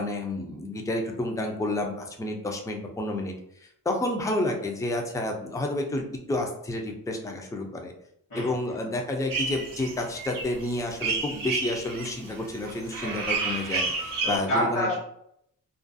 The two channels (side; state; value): both; normal; correlation 0.36